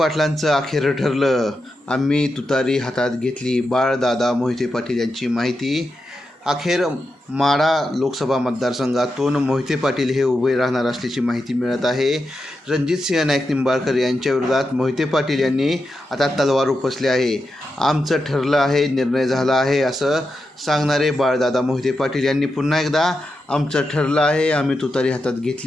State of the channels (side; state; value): both; normal; correlation 0.88